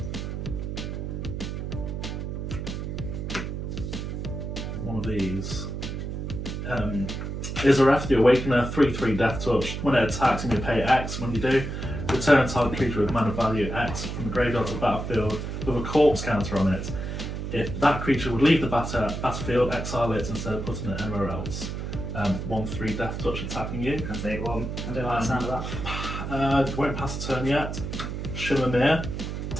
One of these. Is a ref, the Awakener, 3/3 Death Touch. When it attacks, you may pay X. When you do, return target creature with mana value X from the graveyard to the battlefield with a corpse counter on it. If that creature would leave the battlefield, exile it instead of putting it anywhere else. 1/3 Death Touch attacking you. I'll take 1. I don't like the sound of that. Won't pass the turn yet. Shimmermere.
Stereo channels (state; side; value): noise; right; hum, 5 dB below the sound